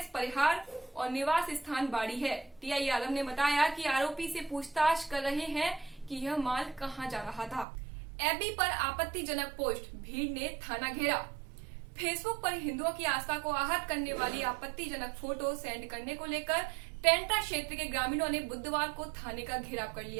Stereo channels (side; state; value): left; drops out; at 7.7 s